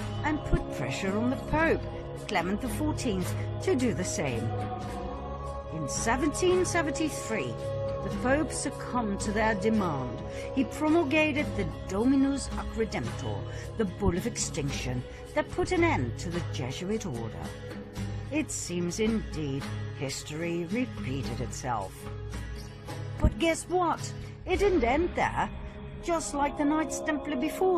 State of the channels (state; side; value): identical; both; correlation 1.00